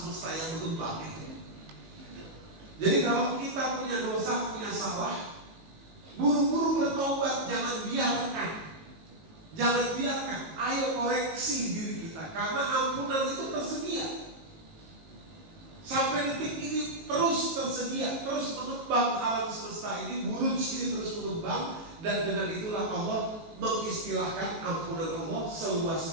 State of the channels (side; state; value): left; late; 19 ms